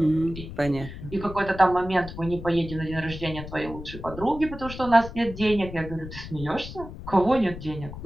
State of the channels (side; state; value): left; noise; rumble, 11 dB below the sound